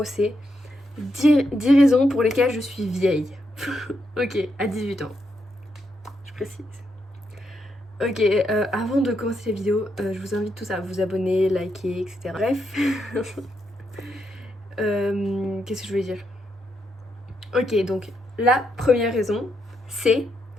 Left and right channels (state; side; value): normal; both; correlation 0.80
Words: c'est 10 raisons pour lesquelles je suis vieille. Ok, à 18 ans. Je précise. Ok, avant de commencer la vidéo, je vous invite tous à vous abonner, liker, etc. Bref. Qu'est-ce que je voulais dire? Ok, donc la première raison, c'est